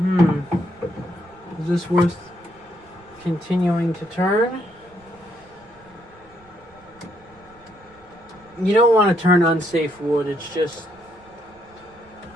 Is this worth continuing to turn? You don't want to turn unsafe wood. It's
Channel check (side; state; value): right; noise; rumble, 27 dB below the sound